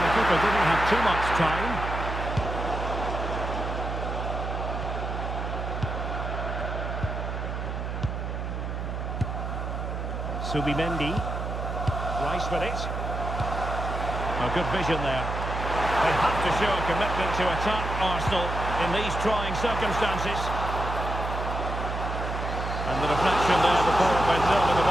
the keeper didn't have too much time. Subimendi. Rice with it. Oh, good vision there. They have to show a commitment to attack Arsenal in these trying circumstances. And the deflection there before it went over the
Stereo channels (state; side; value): noise; right; hum, 4 dB below the sound